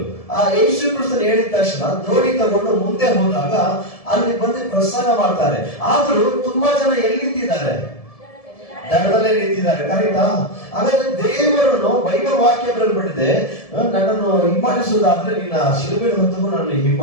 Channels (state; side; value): late; right; 1.7 ms